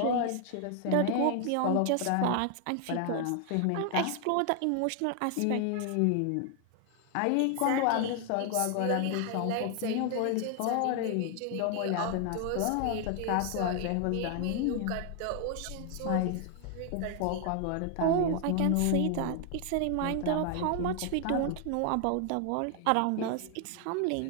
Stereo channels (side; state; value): both; different; correlation 0.00